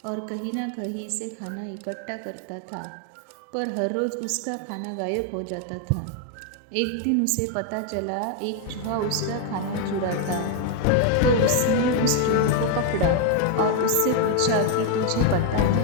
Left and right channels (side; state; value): both; different; correlation 0.01